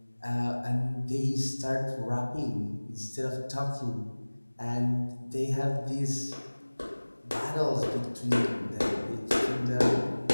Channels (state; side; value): inverted; both; correlation -1.00